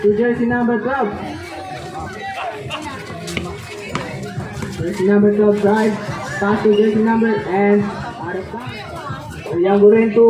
to jersey number 12. Jersey number 12 drive. Pass to jersey number and out of time. Uyang gurin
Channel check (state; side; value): identical; both; correlation 1.00